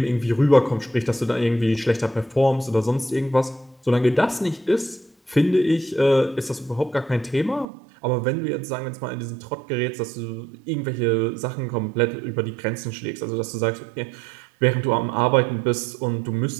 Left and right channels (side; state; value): left; drops out; at 7.7 s